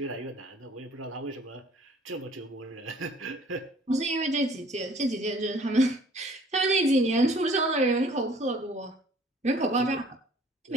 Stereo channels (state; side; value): normal; both; correlation 0.54